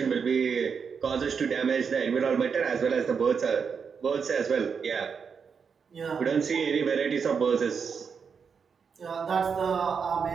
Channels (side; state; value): left; quieter; 6.1 dB